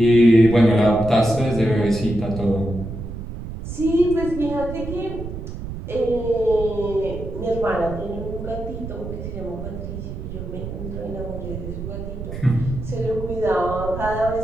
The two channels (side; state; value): right; noise; rumble, 8 dB below the sound